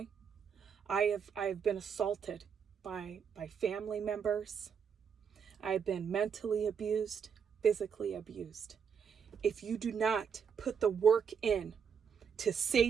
I have been assaulted by family members. I've been mentally abused, physically abused. If you do not put the work in to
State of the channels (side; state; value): left; quieter; 6.9 dB